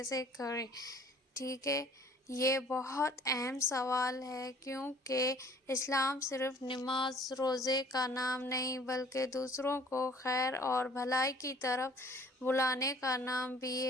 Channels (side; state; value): both; normal; correlation 0.54